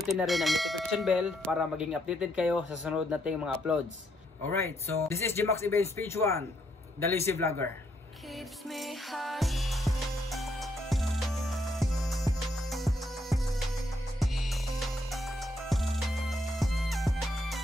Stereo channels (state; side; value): normal; both; correlation 0.74